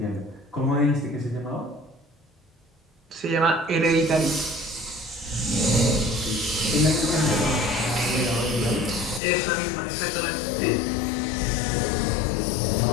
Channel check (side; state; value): right; drops out; at 9.2 s